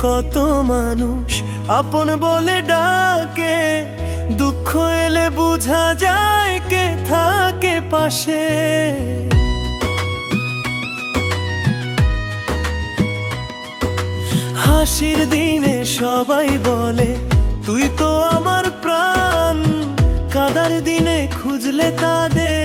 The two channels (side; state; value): both; identical; correlation 1.00